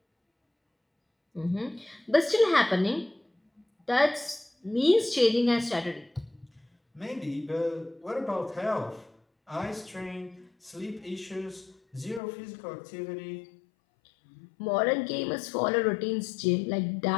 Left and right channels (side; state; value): right; drops out; at 12.2 s